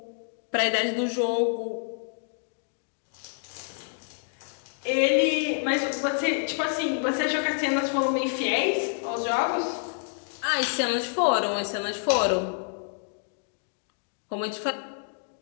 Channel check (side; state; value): right; silent; digital silence